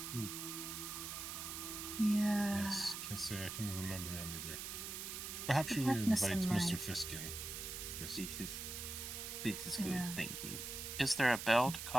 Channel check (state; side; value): noise; right; hiss, 6 dB below the sound